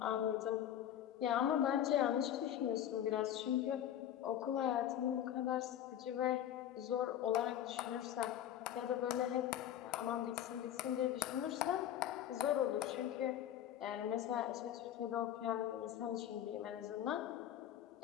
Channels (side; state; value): right; quieter; 11.0 dB